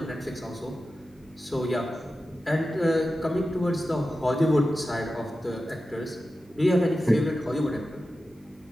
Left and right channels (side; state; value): both; normal; correlation 0.93